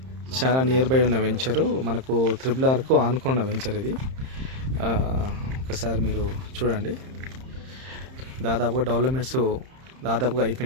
చాలా నియర్ బై ఉన్న వెంచరు, మనకు త్రిబుల్-ఆర్కు ఆనుకున్న వెంచర్ ఇది. ఒకసారి మీరు చూడండి. దాదాపుగా డెవలప్మెంట్స్ దాదాపుగా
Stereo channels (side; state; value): left; late; 31 ms